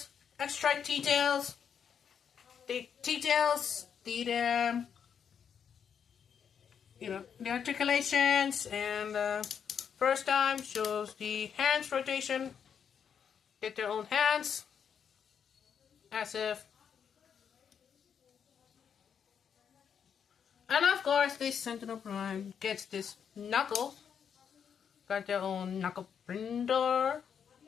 extra details. The details, the articulations, and first time shows the hands rotation. Get their own hands, as if. And of course, this Sentinel Prime gets this knuckle. Got their own knuckle printer.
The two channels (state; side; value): quieter; right; 7.5 dB